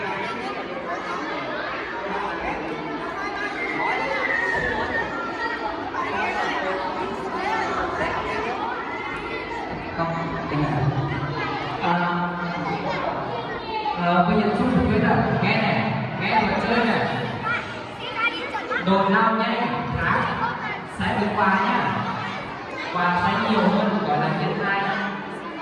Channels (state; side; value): identical; both; correlation 1.00